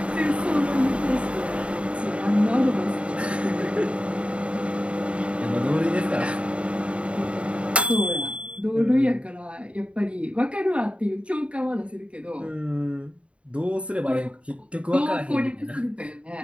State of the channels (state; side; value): late; left; 0.061 ms